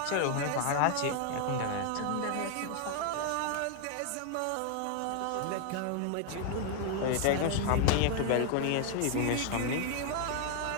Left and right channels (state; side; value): different; both; correlation 0.00